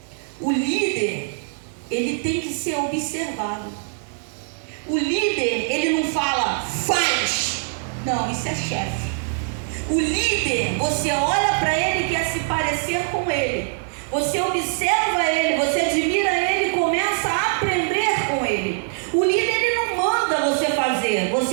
O líder, ele tem que ser observado. O líder, ele não fala, faz. Não, isso é chefe. O líder, você olha para ele e quer se parecer com ele. Você observa ele, você admira ele e começa a aprender com ele. O líder, ele não manda você fazer.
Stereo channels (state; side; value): silent; left; 64 dB below the other